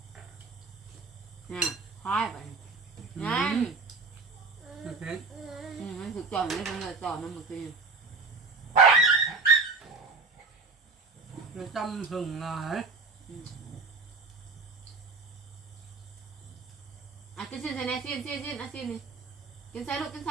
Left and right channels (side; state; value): left; quieter; 4.1 dB